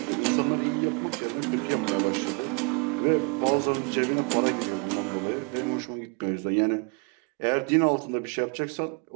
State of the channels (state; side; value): quieter; left; 35.2 dB